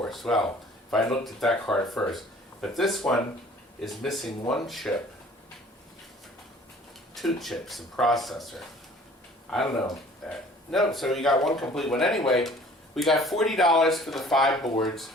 Well, if I looked at that card first. But this one is missing one chip, 2 chips, and processor. I don't know. No, so you got one complete one. Anyway, we got $40 for the 5 boards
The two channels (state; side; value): normal; both; correlation 0.51